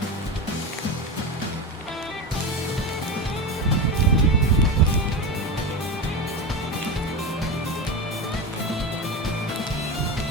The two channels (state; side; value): normal; both; correlation 0.21